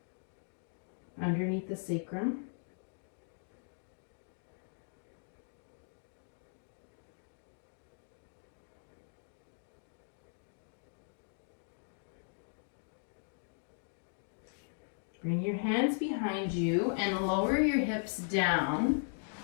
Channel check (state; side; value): silent; right; digital silence